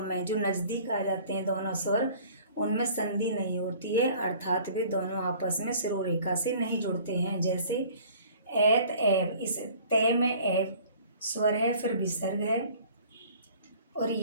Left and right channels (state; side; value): inverted; both; correlation -0.51